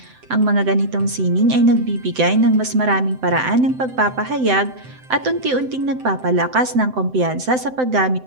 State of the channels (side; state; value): left; late; 7.8 ms